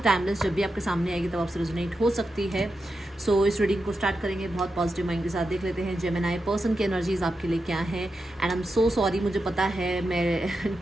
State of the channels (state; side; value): normal; both; correlation 0.88